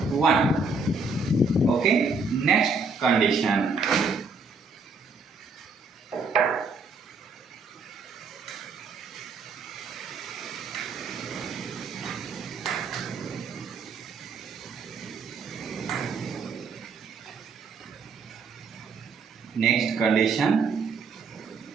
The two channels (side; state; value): left; quieter; 4.2 dB